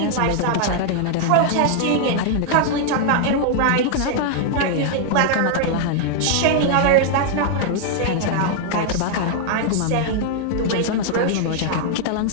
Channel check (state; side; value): different; both; correlation -0.01